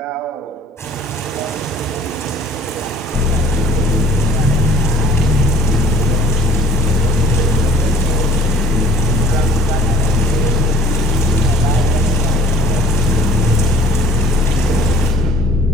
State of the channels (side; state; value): both; normal; correlation 0.52